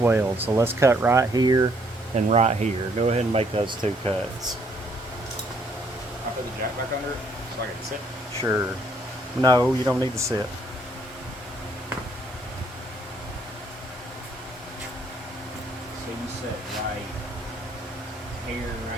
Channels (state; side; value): normal; both; correlation 0.67